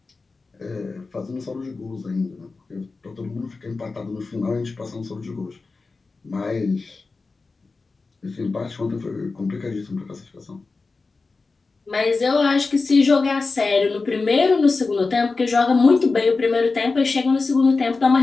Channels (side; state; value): right; quieter; 4.0 dB